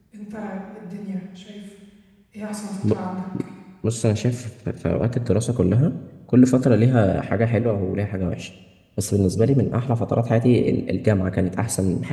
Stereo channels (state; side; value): identical; both; correlation 1.00